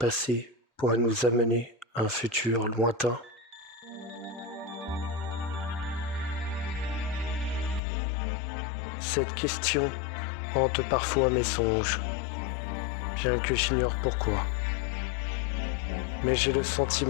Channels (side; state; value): right; drops out; at 7.8 s